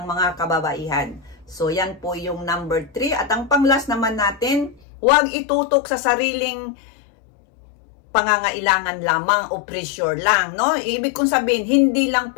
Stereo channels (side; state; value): right; drops out; at 4.8 s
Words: mga kababaihan. So yan po yung number 3. At ang panglas naman natin, huwag itutok sa sariling pangangailangan lamang o pressure lang, no? Ibig kong sabihin, hindi lang